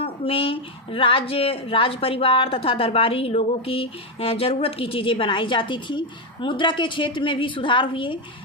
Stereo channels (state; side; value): normal; both; correlation 0.06